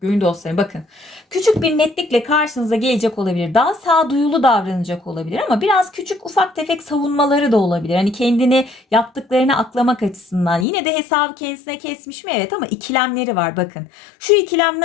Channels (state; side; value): drops out; right; at 10.7 s